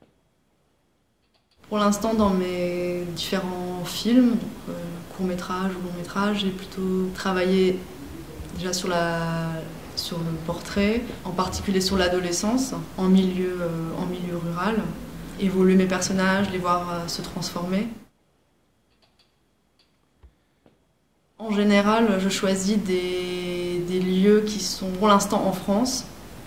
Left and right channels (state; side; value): identical; both; correlation 1.00